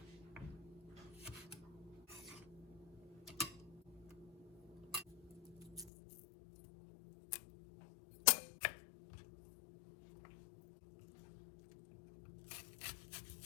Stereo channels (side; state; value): right; drops out; at 5.9 s